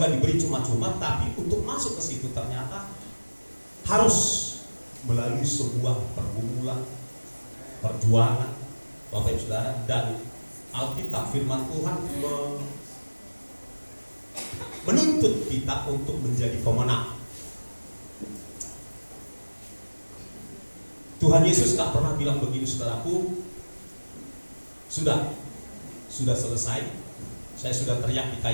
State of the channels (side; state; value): both; inverted; correlation -1.00